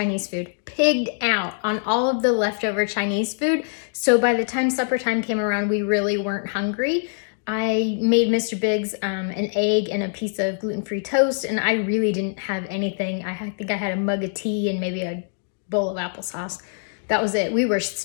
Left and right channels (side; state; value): right; silent; digital silence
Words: food. Pigged out on all of the leftover Chinese food. So by the time supper time came around, we really weren't hungry. I made Mr. Biggs an egg and a piece of gluten-free toast, and I really didn't have anything. I think I had a mug of tea and maybe a bowl of applesauce. That was it. We were